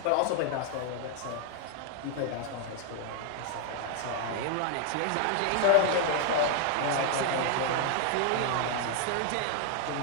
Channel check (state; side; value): different; both; correlation 0.00